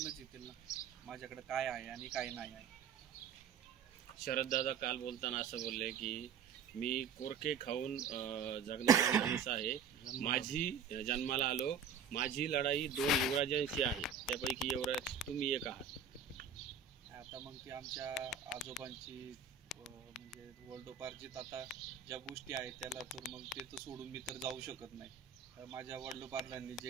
येतील ना माझ्याकडे काय आहे आणि काय नाही आहे. शरददादा काल बोलताना असं बोलले की मी कोरके खाऊन जगणारा माणूस आहे. माझी जन्माला आलो, माझी लढाई 2 युवराजांशी आहे, त्यापैकी युवराज तुम्ही एक आहात. आता मग ती आमच्या आजोबांची म्हणजे वडिलोपार्जित आता ज्या गोष्टी आहेत त्याला तर मग ते तर सोडून मी तर जाऊ शकत नाही. माझ्या वडिलोपार्जांनी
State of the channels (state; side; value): quieter; left; 6.2 dB